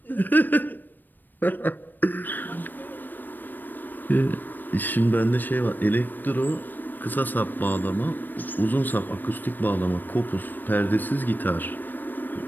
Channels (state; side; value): late; right; 0.091 ms